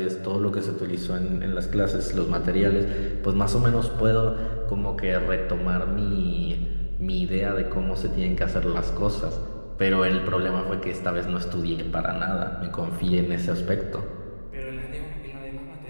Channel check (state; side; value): inverted; both; correlation -1.00